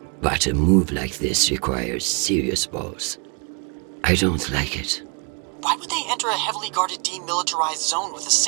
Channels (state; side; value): quieter; left; 36.1 dB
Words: but a move like this requires serious balls. I don't like it. Why would they enter a heavily guarded demilitarized zone with a